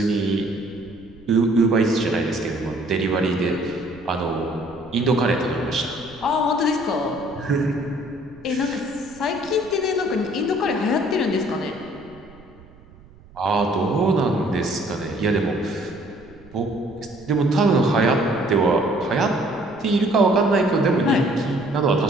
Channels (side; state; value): right; noise; rumble, 24 dB below the sound